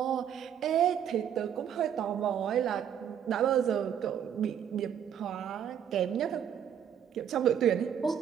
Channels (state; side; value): quieter; left; 9.0 dB